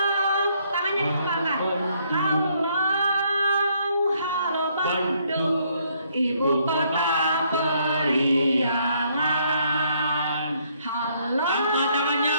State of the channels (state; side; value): inverted; both; correlation -0.69